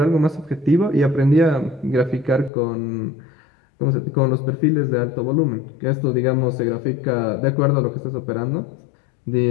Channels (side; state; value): right; drops out; at 2.5 s